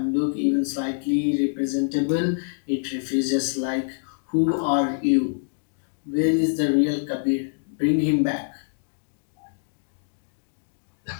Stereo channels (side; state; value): right; silent; digital silence